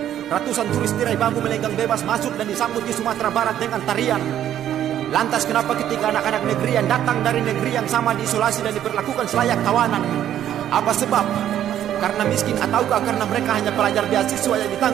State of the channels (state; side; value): quieter; left; 11.0 dB